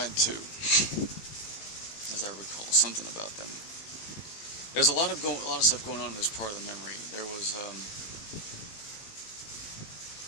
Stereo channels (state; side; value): late; right; 19 ms